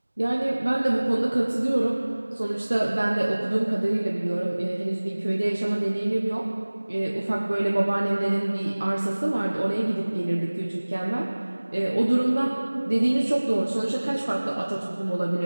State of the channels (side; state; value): both; inverted; correlation -1.00